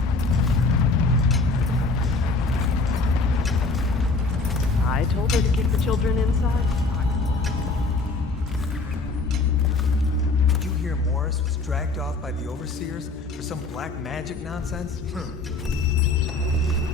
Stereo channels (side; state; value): right; quieter; 3.5 dB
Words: I told her to kick the children inside. Did you hear Morris was dragged off by the overseers for some black magic nonsense?